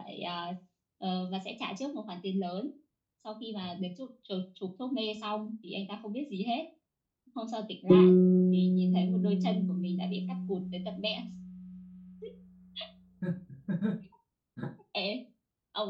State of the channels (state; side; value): identical; both; correlation 1.00